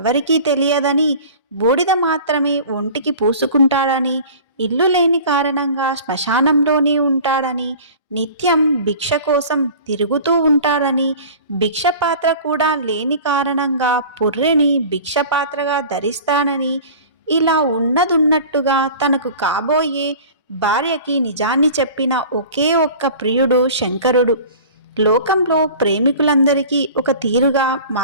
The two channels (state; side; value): inverted; both; correlation -0.41